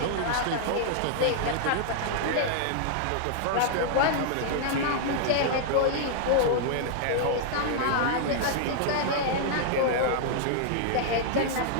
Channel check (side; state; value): both; different; correlation -0.01